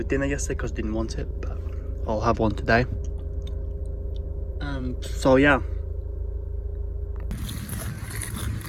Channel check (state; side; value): identical; both; correlation 1.00